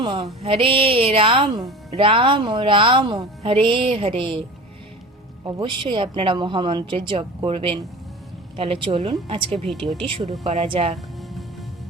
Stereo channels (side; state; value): both; normal; correlation 0.36